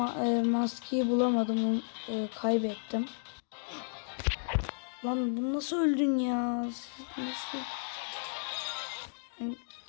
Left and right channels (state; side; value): silent; right; digital silence